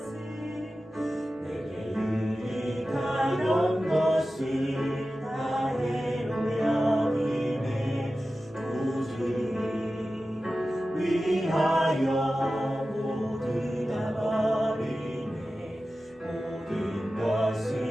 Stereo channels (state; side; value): normal; both; correlation 0.94